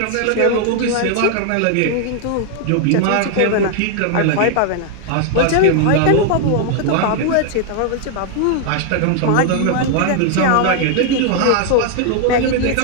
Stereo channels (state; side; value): different; both; correlation 0.00